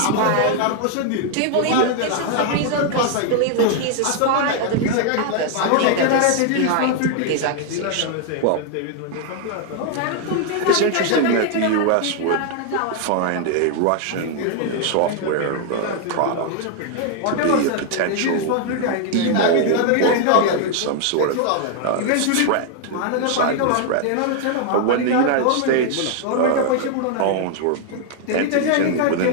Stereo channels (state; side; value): different; both; correlation 0.00